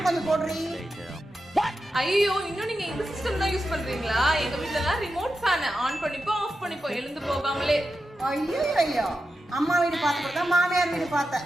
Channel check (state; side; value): normal; both; correlation 0.90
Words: கொஞ்சம் போடுறீ. ஐயோ, இன்னும் நீங்க இந்த சிஸ்டம் தான் யூஸ் பண்றீங்களா? எங்க வீட்ல எல்லாம் ரிமோட் ஃபேன் ஆன் பண்ணிப்போ ஆஃப் பண்ணிப்போ எழுந்து போகாமலே. ஐயோ ஐயோ, அம்மா வீடு பார்த்துட்டு தான் மாமியார் வீடு பார்த்தேன்.